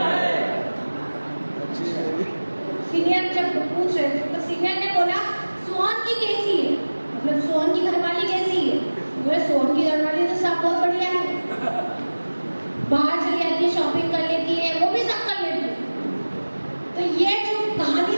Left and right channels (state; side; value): inverted; both; correlation -1.00